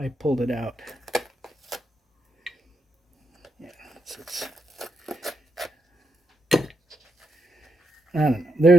pulled it out. Yeah, I don't know.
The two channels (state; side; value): normal; both; correlation 0.82